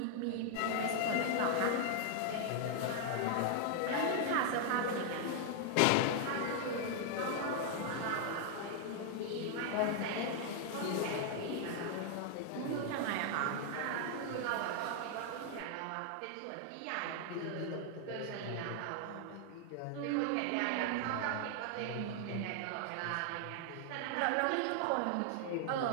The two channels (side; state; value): both; different; correlation 0.00